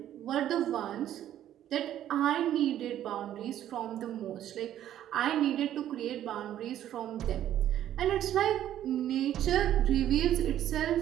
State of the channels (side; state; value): left; quieter; 11.6 dB